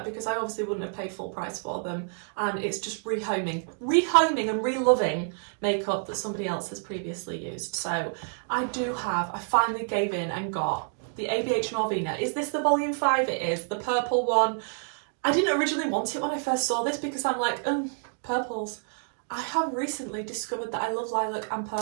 because I obviously wouldn't have paid full price for them, and it's just rehoming and re-loving makeup that somebody else has previously used. So I finally gave in and got the ABH Norvina. Is this the volume 5? It is, the purple one. I didn't originally want it when I first saw this because I'm like, purples. I have recently discovered that I love lilac and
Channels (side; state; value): left; silent; 59 dB below the other